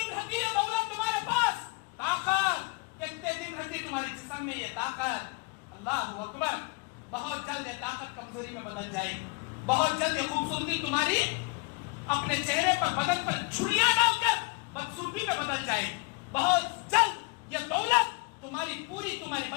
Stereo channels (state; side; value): quieter; right; 28.9 dB